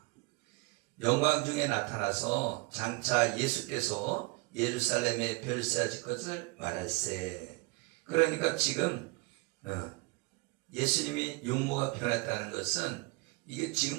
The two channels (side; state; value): left; quieter; 25.8 dB